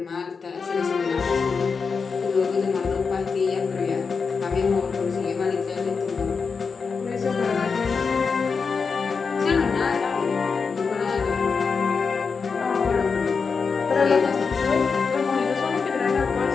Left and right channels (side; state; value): right; quieter; 5.2 dB